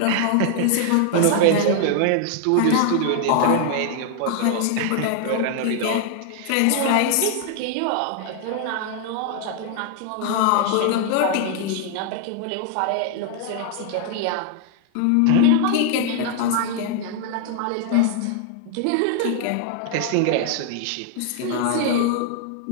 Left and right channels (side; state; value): both; different; correlation 0.00